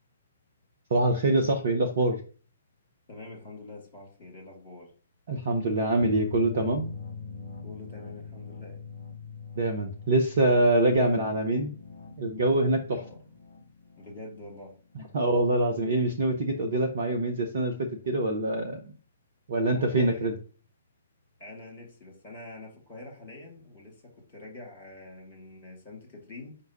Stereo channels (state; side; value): inverted; both; correlation -0.53